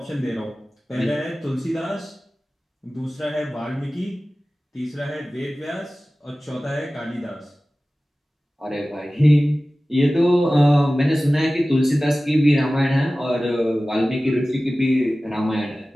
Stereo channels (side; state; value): both; normal; correlation 0.96